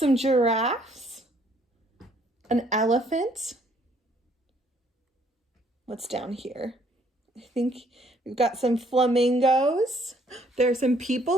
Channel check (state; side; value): normal; both; correlation 0.65